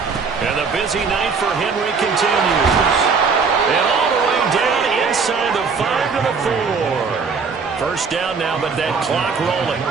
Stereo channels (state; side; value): quieter; left; 5.2 dB